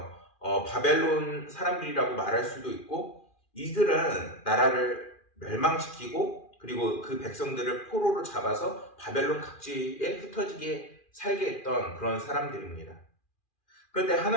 바벨론 사람들이라고 말할 수도 있고, 이들은 나라를 멸망시키고 그리고 그 백성들을 포로로 잡아서 바벨론 각지에 흩어지게 살게 했던 그런 사람들입니다. 그런데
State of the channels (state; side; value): late; right; 2.4 ms